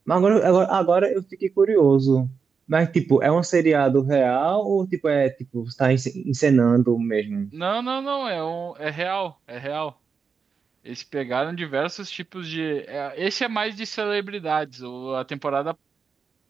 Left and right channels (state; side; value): quieter; left; 5.6 dB